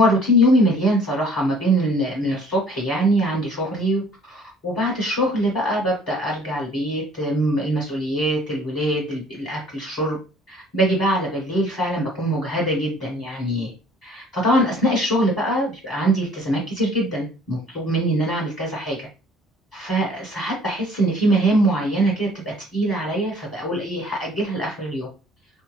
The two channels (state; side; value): normal; both; correlation 0.54